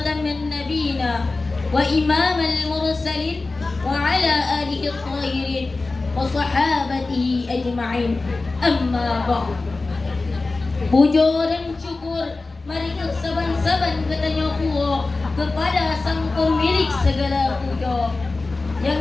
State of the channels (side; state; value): right; quieter; 3.5 dB